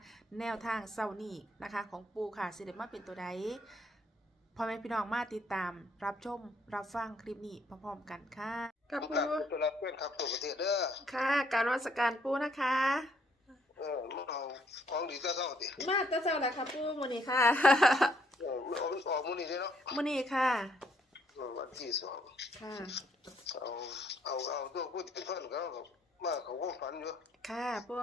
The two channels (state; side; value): normal; both; correlation 0.68